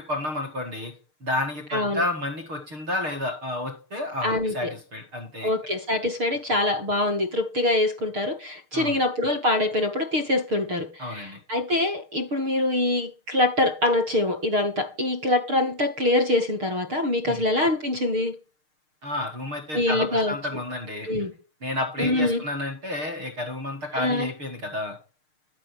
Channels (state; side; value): late; left; 6.6 ms